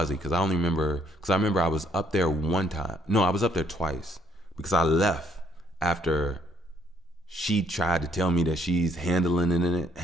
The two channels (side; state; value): both; normal; correlation 0.67